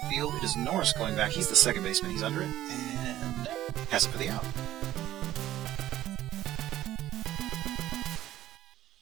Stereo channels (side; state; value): left; quieter; 13.6 dB